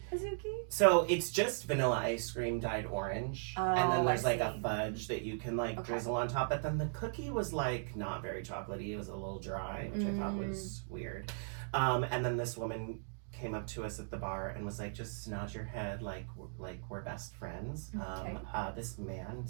Bazooki? So it's just vanilla ice cream dyed orange. Oh, and then there's like a fudge that you can drizzle on top. But then the cookie was like not very chocolatey. It was a little dry, which I thought was weird. And then this woman came up to us at the bar and was like, just nod your head like we're best friends. Okay. This man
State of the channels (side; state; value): left; silent; digital silence